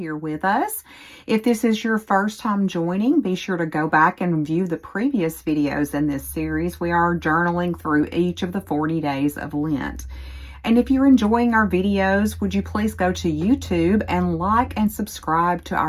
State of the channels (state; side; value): identical; both; correlation 1.00